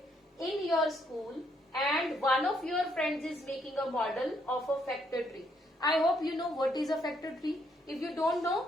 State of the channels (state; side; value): normal; both; correlation 0.72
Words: in your school and one of your friends is making a model of a factor tree. I hope you know what is a factor tree. If you don't know,